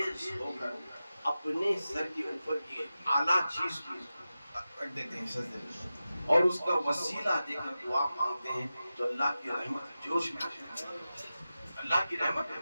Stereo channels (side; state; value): both; inverted; correlation -0.93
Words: होकर अपने सर के ऊपर की आला चीज को रख देते हैं सजदे में, और उसका वसीला देकर दुआ मांगते हैं, तो अल्लाह की रहमत जोश में आ जाती है, अल्लाह की रहमत